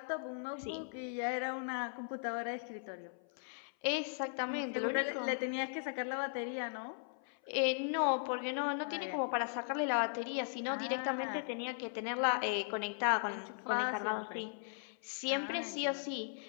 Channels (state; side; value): silent; right; 52 dB below the other